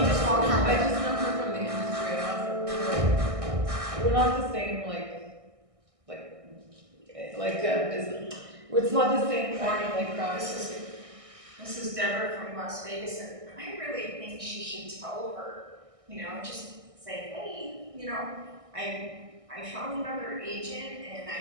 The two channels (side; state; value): left; late; 1.6 ms